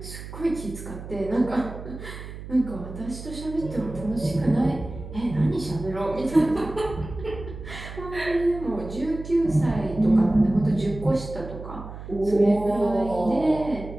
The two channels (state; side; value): noise; right; hum, 11 dB below the sound